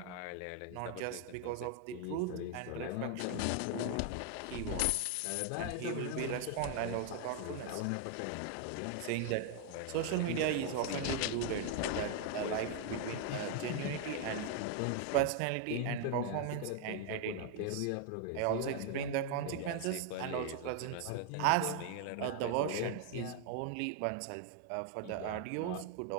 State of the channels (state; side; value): different; both; correlation 0.00